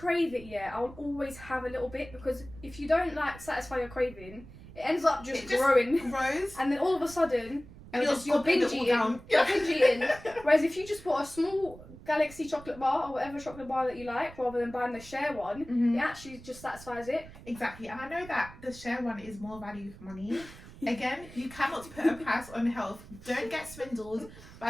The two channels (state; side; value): noise; right; rumble, 18 dB below the sound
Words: it, I'll always have a little bit because if you don't like satisfy your craving, it ends up just growing. And then all of a sudden, you're binge eating. You're binge eating. Whereas if you just put a small Galaxy chocolate bar or whatever chocolate bar that you like, rather than buying the share one, it actually just satisfies it. Exactly, and I know that the share one is more value for money. Again, you cannot put a price on health. Don't get swindled